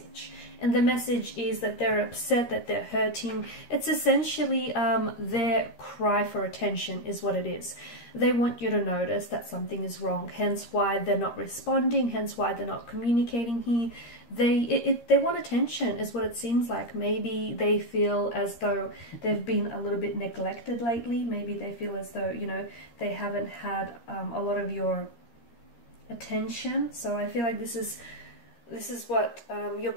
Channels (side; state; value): right; late; 13 ms